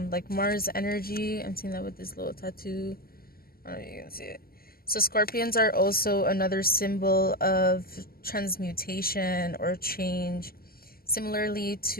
like Mars energy. I'm seeing that with this little tattoo. I don't know if you can see it. So Scorpions are also another symbol of transmutation or change, similarly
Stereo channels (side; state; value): right; late; 0.43 ms